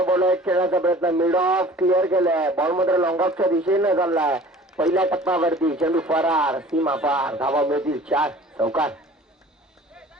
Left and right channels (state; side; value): normal; both; correlation 0.46